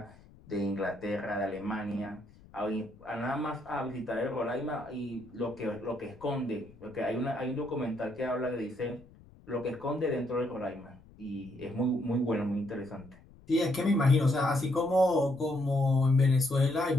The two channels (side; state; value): left; noise; rumble, 24 dB below the sound